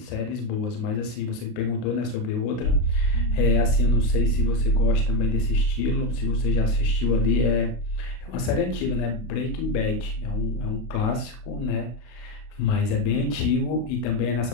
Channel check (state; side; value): late; right; 32 ms